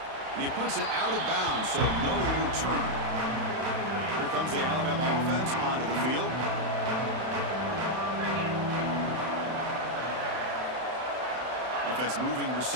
And he puts it out of bounds, so no return. Here comes the Alabama offense onto the field. Offense moving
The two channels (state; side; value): late; left; 31 ms